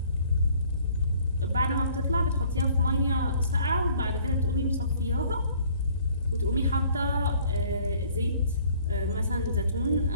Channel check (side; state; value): both; inverted; correlation -0.57